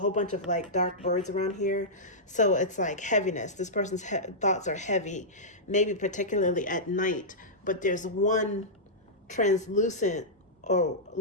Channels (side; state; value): both; normal; correlation -0.13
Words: bunch of like dark birds around here. So it's like heaviness. This person's thoughts are heavy, maybe particularly at night, but there's one translucent or